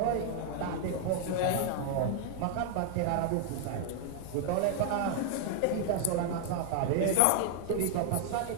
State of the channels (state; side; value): different; both; correlation 0.00